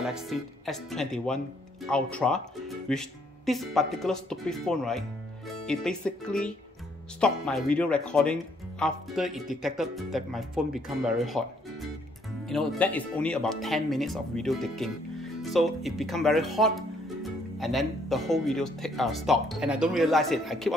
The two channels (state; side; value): normal; both; correlation 0.67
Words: S21 Ultra, which this particular stupid phone, right, it basically stopped my video recording after it detected that my phone become very hot. You know, that is only about 10 minutes of video taking. So it become very hot, and then the whole video stopped, and I don't realize it. I keep